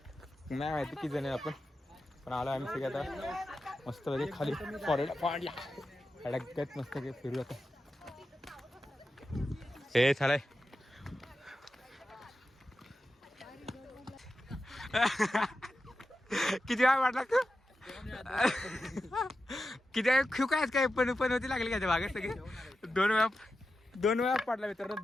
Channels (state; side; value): normal; both; correlation 0.91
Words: माहिती किती जण आपण. पण आलो आम्ही सगळे आता मस्त खाली फॉरेड पाडला अडगत मस्त फिरू आता. हे चालाय किती वेळा वाटला तू. किती वेळा खेळ काय पण होती लागली का भागात सगळे. 2 वेळा पडला मित्रांनो.